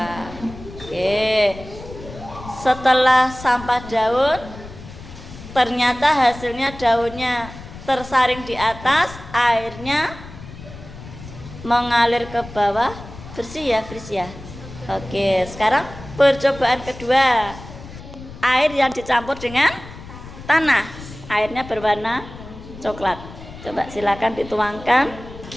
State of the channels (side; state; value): left; noise; rumble, 15 dB below the sound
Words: Oke. Setelah sampah daun, ternyata hasilnya daunnya tersaring di atas, airnya mengalir ke bawah. Bersih ya. Oke, sekarang percobaan kedua. Air yang dicampur dengan tanah. Airnya berwarna coklat. Coba silakan dituangkan.